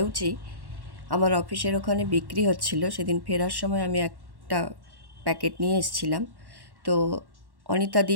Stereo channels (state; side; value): late; left; 1.1 ms